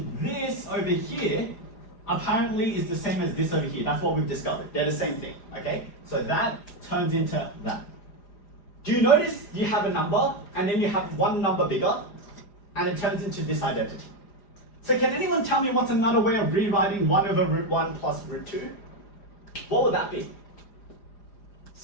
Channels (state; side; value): late; right; 4.9 ms